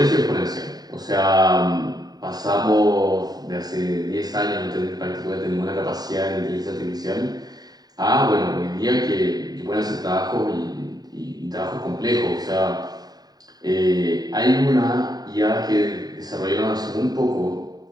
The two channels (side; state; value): left; late; 0.19 ms